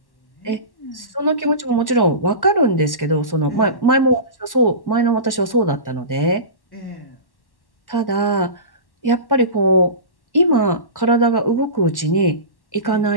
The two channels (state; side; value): late; right; 1.1 ms